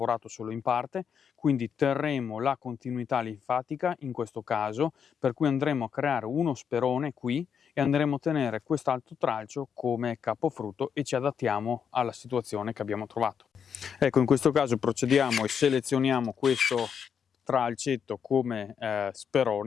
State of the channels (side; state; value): right; quieter; 7.3 dB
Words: solo in parte, quindi terremo la continuità linfatica in questo caso, per cui andremo a creare uno sperone qui e andremo a tenere quest'altro tralcio come capofrutto e ci adattiamo alla situazione che abbiamo trovato. Ecco, in questo caso procediamo e selezioniamo questo tralcetto come